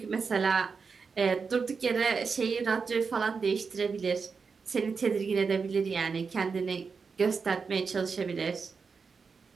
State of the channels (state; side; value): quieter; left; 5.3 dB